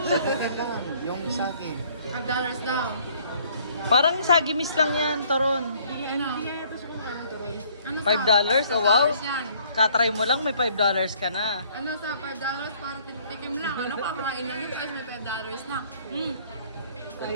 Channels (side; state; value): both; inverted; correlation -0.61